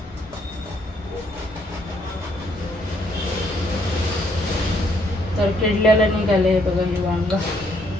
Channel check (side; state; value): both; normal; correlation 0.69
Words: तर किडलेलं निघाले बघा हे वांग।